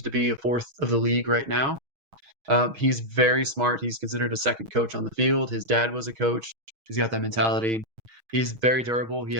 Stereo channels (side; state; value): left; late; 6.3 ms